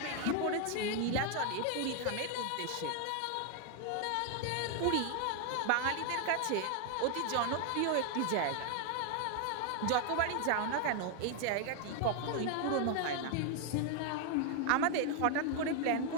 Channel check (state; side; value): different; both; correlation 0.00